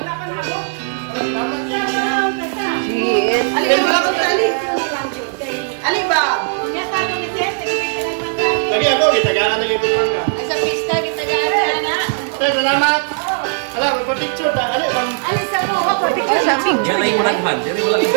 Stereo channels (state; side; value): silent; left; 61 dB below the other